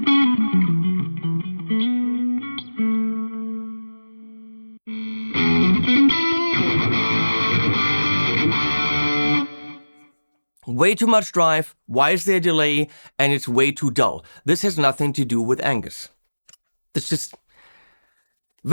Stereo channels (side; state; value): both; inverted; correlation -1.00